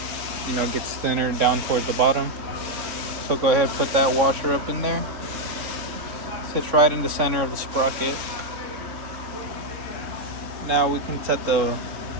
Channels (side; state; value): left; late; 3.6 ms